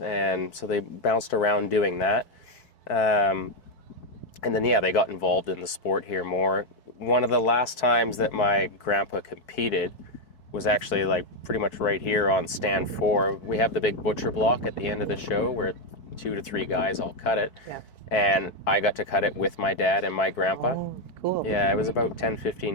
and so they bounced around doing that. Um, and then yeah, they got involved in the sport here more. One of the last times that my grandpa competed was actually like pretty much right here on stand 4. We have the big butcher block at the end of the show where 2 to 3 guys all cut it. Yeah. And I got to cut it with my dad and my grandpa. Oh, cool. Yeah, it was about 10,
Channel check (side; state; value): right; late; 4.6 ms